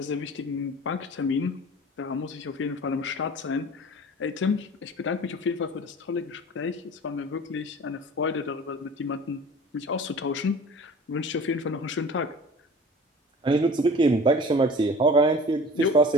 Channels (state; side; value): normal; both; correlation 0.42